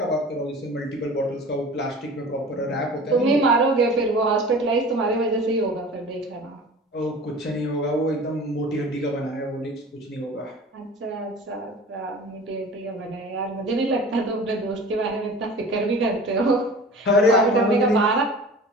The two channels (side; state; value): both; normal; correlation 0.40